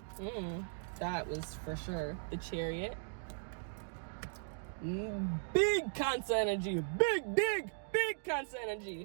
That was for sure the Chariot. Big Cancer energy. Big Cancer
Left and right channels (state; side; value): silent; left; digital silence